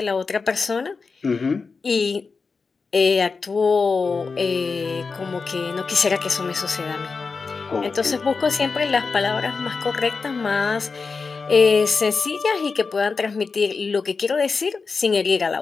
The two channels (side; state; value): right; quieter; 4.7 dB